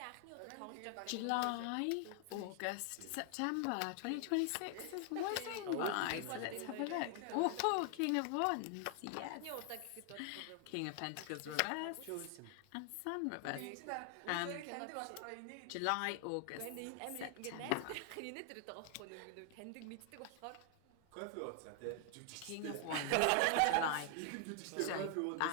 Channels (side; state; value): both; different; correlation 0.00